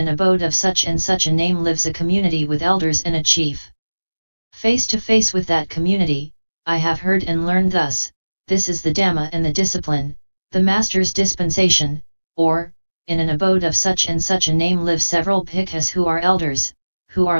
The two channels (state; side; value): inverted; both; correlation -1.00